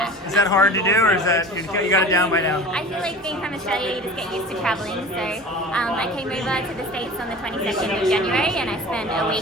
is that hard to do, or is that you got it down by now? I feel like being from Australia, you just get used to traveling. So I came over to the States on the 22nd of January, and I spent a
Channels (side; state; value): both; normal; correlation 0.39